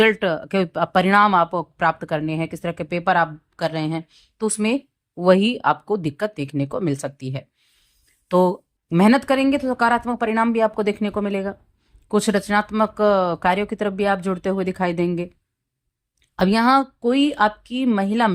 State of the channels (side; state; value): both; identical; correlation 1.00